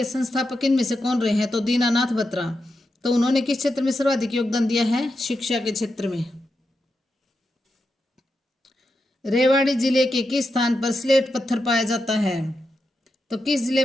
संस्थापक इनमें से कौन रहे हैं? तो दीनानाथ बत्रा। तो उन्होंने किस क्षेत्र में सर्वाधिक योगदान दिया है? शिक्षा के क्षेत्र में। रेवाड़ी जिले के किस स्थान पर स्लेट पत्थर पाया जाता है? तो किस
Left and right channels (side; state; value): both; normal; correlation 0.87